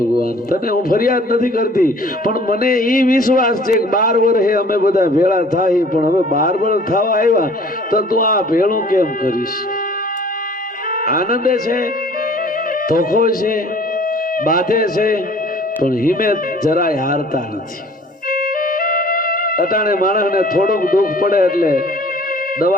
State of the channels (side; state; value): both; normal; correlation 0.52